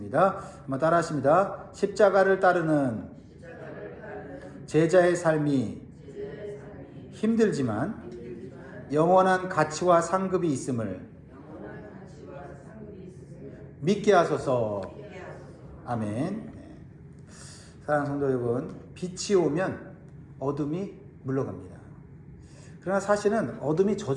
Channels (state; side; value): identical; both; correlation 1.00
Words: 한번 따라 하십니다. 십자가를 따르는 제자의 삶이 힘들지만 영원한 가치와 상급이 있음을 믿게 하소서. 아멘. 사랑하는 성도 여러분, 빛이 오면 어둠이 물러갑니다. 그러나 사실은 어둠이